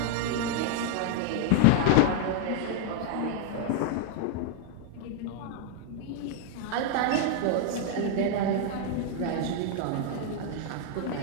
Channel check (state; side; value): different; both; correlation 0.00